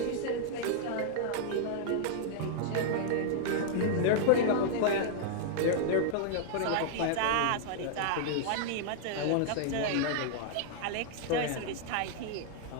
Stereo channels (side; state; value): both; different; correlation -0.01